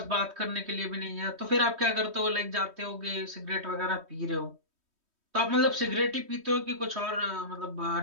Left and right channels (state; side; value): late; left; 3.1 ms